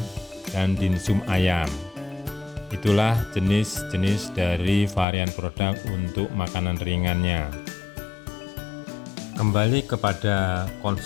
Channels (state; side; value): drops out; right; at 5.1 s